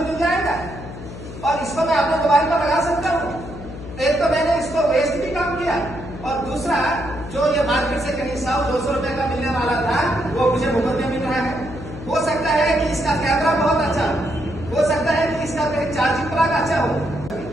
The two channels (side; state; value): left; noise; hum, 12 dB below the sound